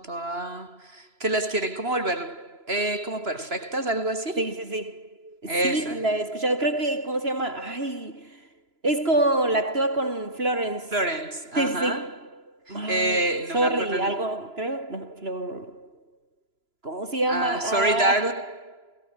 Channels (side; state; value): left; late; 3.0 ms